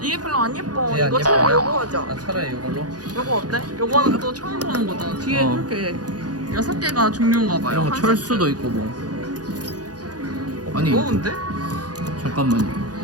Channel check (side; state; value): left; late; 0.69 ms